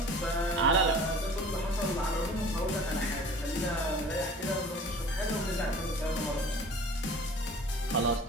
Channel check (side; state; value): both; normal; correlation 0.44